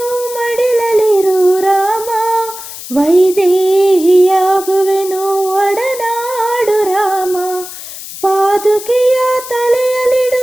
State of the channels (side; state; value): left; noise; hiss, 12 dB below the sound